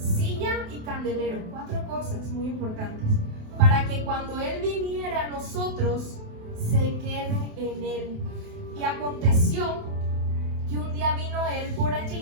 y candelero. 4 cosas muy importantes, para que cuando él viniera a nosotros, se quede en él. Y aconteció que un día vino él por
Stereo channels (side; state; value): left; late; 28 ms